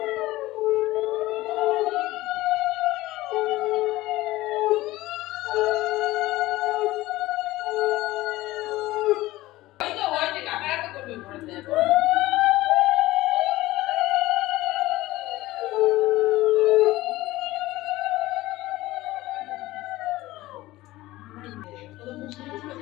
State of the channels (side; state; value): right; quieter; 17.8 dB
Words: ওই তো হয়েছে কাকারা তো করবে ঘরে